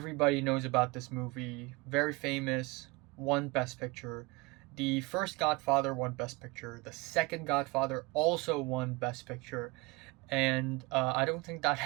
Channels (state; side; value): quieter; left; 25.3 dB